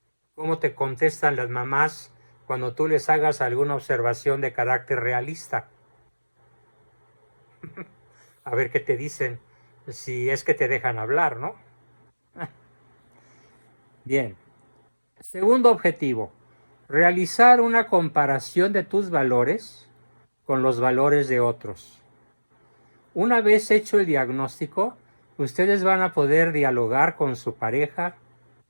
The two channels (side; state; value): both; inverted; correlation -1.00